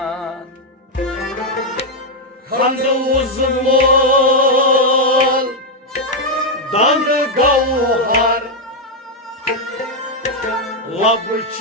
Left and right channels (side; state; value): both; normal; correlation 0.00